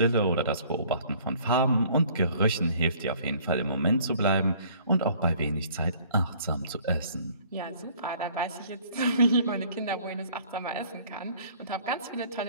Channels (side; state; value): both; inverted; correlation -0.55